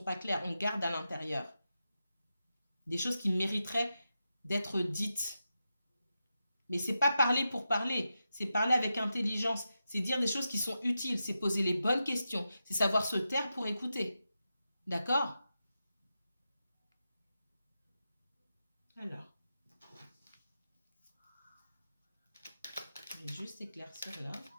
pas claires. On garde à l'intérieur des choses qui mériteraient d'être dites. Mais c'est pas parler pour parler, c'est parler avec intelligence, c'est dire des choses qui sont utiles, c'est poser les bonnes questions, c'est savoir se taire pour écouter. D'accord? Alors, je vais juste éclaircir là.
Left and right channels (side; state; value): both; inverted; correlation -0.89